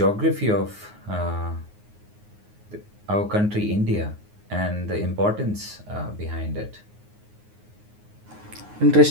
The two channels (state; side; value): late; left; 9.6 ms